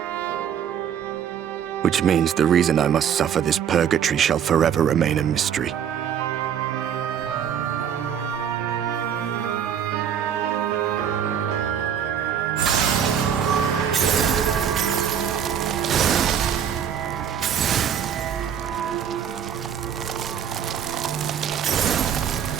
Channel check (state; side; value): quieter; left; 8.6 dB